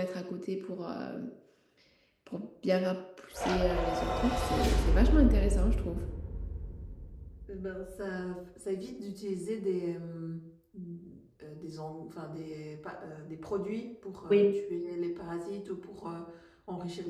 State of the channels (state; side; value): identical; both; correlation 1.00